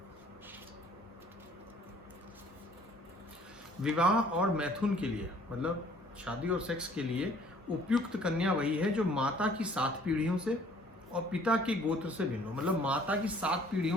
विवाह और मैथुन के लिए, मतलब शादी और सेक्स के लिए उपयुक्त कन्या वही है जो माता की 7 पीढ़ियों से और पिता के गोत्र से भिन्न हो। मतलब माता की 7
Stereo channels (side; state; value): both; normal; correlation 0.56